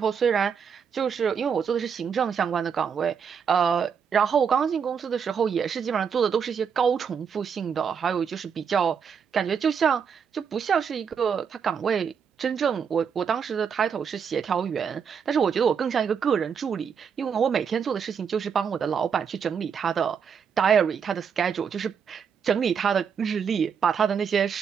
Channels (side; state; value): left; quieter; 6.9 dB